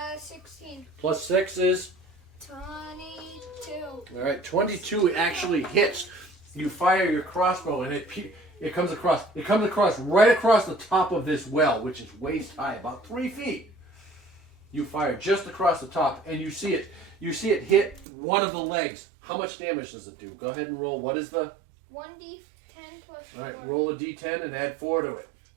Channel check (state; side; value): drops out; left; at 18.1 s